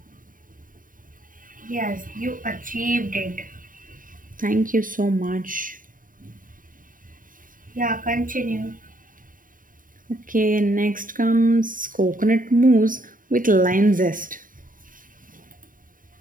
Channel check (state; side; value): late; left; 0.39 ms